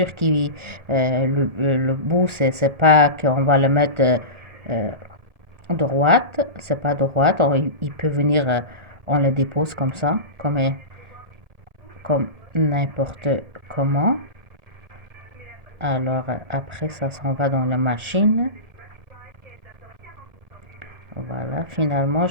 que le bout, c'est pas qu'on va le mettre euh, droite, c'est pas droite. Il peut venir, on le dépose comme ça, comme n'importe comment. Alors après, ça s'en va dans la machine. Voilà, finalement,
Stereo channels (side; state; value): left; late; 1.8 ms